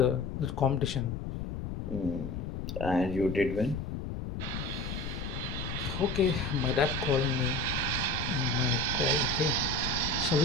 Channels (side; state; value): left; noise; rumble, 5 dB below the sound